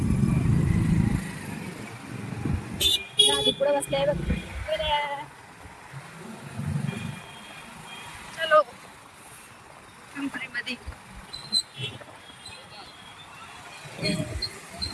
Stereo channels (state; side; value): identical; both; correlation 1.00